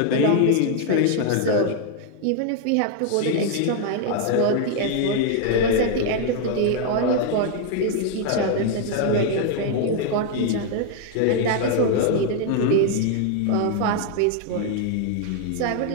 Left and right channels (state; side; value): different; both; correlation 0.00